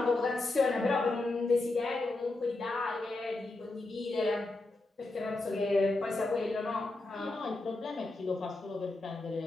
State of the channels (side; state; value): right; quieter; 3.0 dB